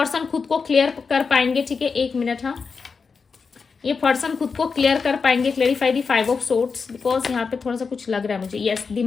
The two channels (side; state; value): right; quieter; 5.1 dB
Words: खुद को क्लियर कर पाएंगे, ठीक है। 1 मिनट, हाँ, ये पर्सन खुद को क्लियर कर पाएंगे। Clarify the 5 of swords, because यहाँ पे थोड़ा सा कुछ लग रहा है मुझे। यस, द